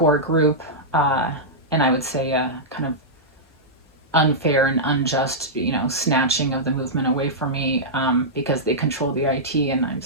group. Uh, and I would say kind of unfair and unjust, snatching of the movement away from me, because they control the IT, and I'm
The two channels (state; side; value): normal; both; correlation -0.11